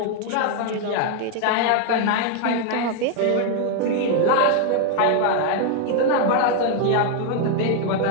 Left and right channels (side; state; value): both; different; correlation 0.00